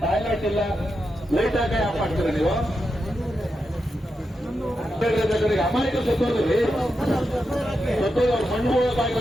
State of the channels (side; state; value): both; normal; correlation 0.87